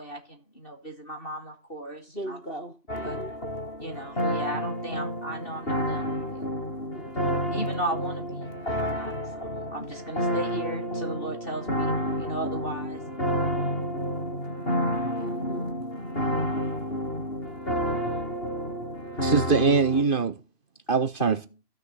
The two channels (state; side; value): late; right; 2.5 ms